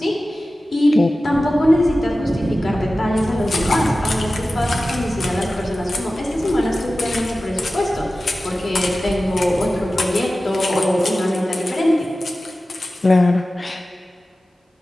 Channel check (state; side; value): normal; both; correlation 0.95